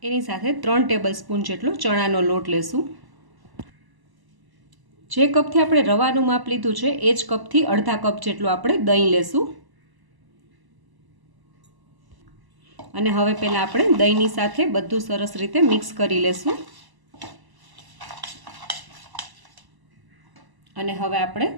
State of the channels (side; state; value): left; late; 1.0 ms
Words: એની સાથે 3 ટેબલસ્પૂન જેટલો ચણાનો લોટ લેશું. જે કપથી આપણે રવાનું માપ લીધું છે એ જ કપથી અડધા કપ જેટલું આપણે દહીં લેશું. અને હવે પહેલાં આપણે દહીંની સાથે બધું સરસ રીતે મિક્સ કરી લેશું. અને હવે આપણે